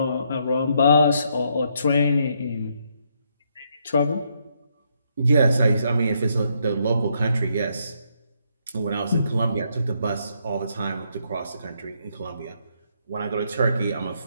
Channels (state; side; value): inverted; both; correlation -0.75